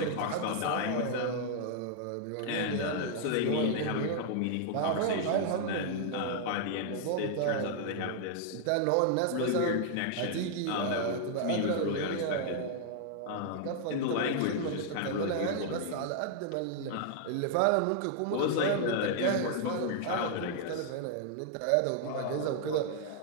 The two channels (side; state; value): both; different; correlation -0.01